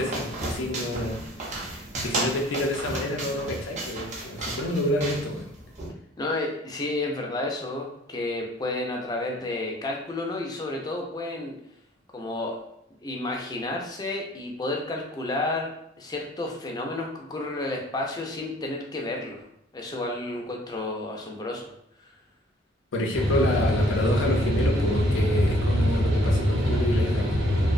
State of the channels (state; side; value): normal; both; correlation 0.58